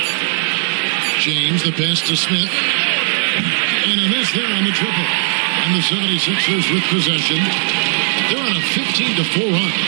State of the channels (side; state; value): left; silent; 68 dB below the other